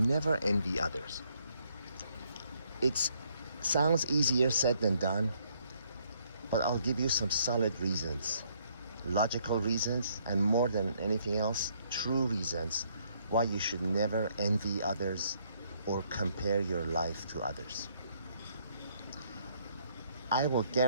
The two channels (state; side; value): inverted; both; correlation -0.69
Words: envy others. It sounds easier said than done, but I'll give you some solid reasons, logical reasons, and more than anything else, true reasons why you should never envy others or compare your life to others. I will